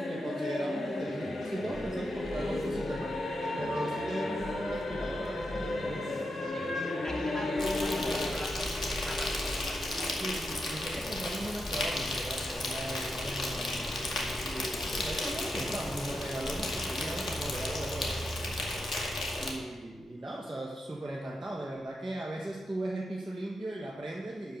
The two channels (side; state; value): both; normal; correlation 0.85